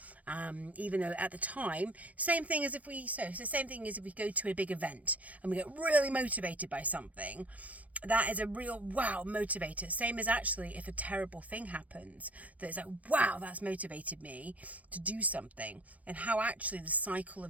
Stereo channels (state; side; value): late; left; 0.068 ms